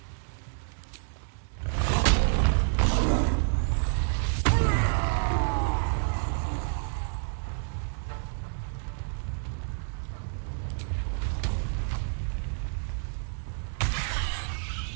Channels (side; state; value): left; silent; digital silence